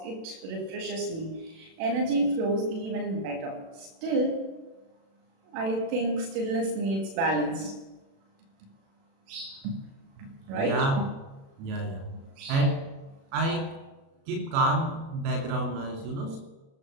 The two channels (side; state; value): left; late; 36 ms